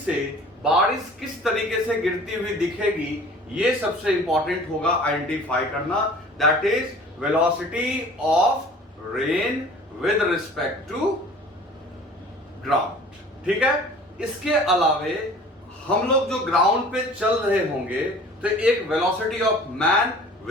बारिश किस तरीके से गिरती हुई दिखेगी, ये सबसे इंपॉर्टेंट होगा आइडेंटिफाई करना। That is velocity of rain with respect to ground. ठीक है। इसके अलावे हम लोग जो ग्राउंड पे चल रहे होंगे तो एक velocity of man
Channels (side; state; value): both; normal; correlation 0.46